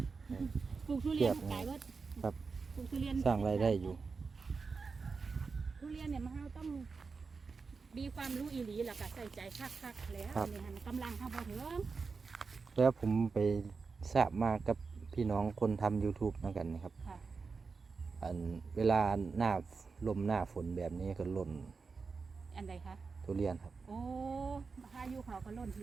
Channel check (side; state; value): left; quieter; 4.7 dB